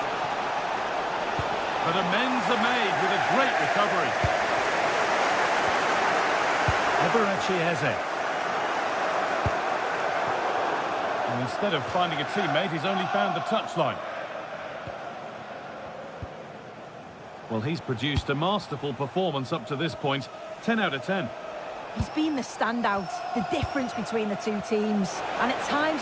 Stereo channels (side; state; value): both; identical; correlation 1.00